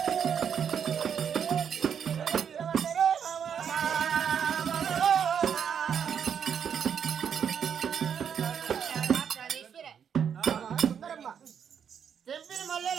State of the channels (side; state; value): left; quieter; 7.8 dB